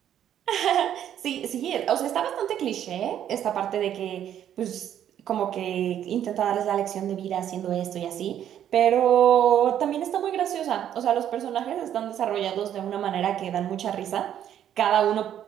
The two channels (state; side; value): quieter; left; 10.3 dB